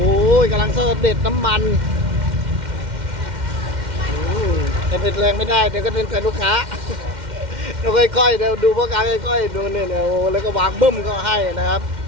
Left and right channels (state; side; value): late; left; 2.1 ms